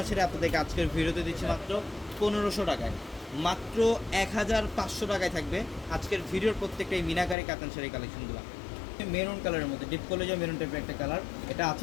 শাড়ি আপনাদেরকে আজকের ভিডিওতে দিচ্ছি মাত্র 1500 টাকায়, মাত্র 1,500 টাকায় থাকবে আজকের ভিডিওর প্রত্যেকটা এই মিনাকারি কাতান শাড়ি কালেকশনগুলো। মেরুন কালারের মধ্যে ডিপ কলেজে মেরুন টাইপের একটা কালার, এটা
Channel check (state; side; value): drops out; right; at 7.4 s